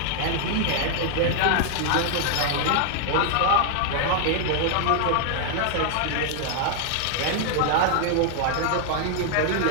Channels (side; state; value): both; different; correlation 0.00